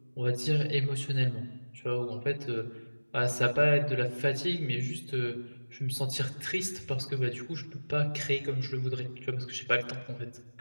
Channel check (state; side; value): inverted; both; correlation -1.00